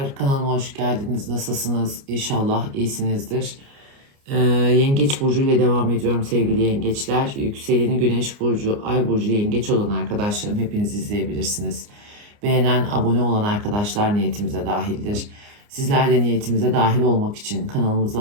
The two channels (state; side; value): late; left; 29 ms